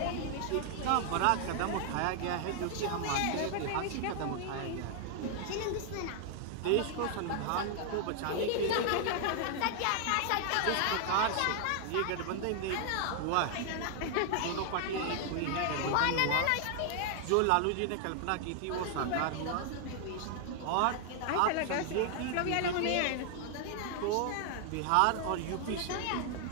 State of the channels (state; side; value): different; both; correlation 0.00